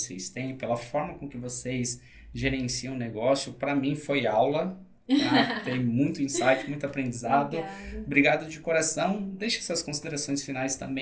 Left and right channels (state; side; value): identical; both; correlation 1.00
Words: têm, pela forma com que vocês gerenciam o negócio. Para mim foi aula. tá? Tem muito insight, muito aprendizado. Obrigada. Obrigado de coração. Deixe suas considerações finais